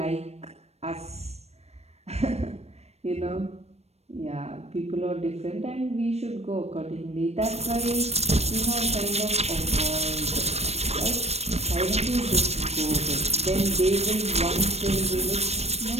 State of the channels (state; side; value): late; left; 0.31 ms